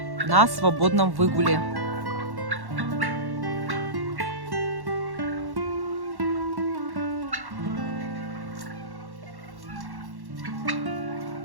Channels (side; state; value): left; late; 1.1 ms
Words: на свободном выгуле.